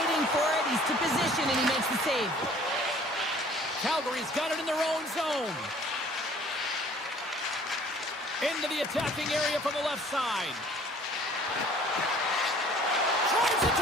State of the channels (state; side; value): normal; both; correlation 0.53